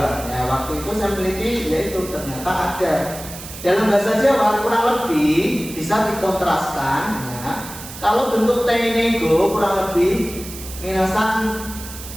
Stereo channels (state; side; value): noise; right; hiss, 13 dB below the sound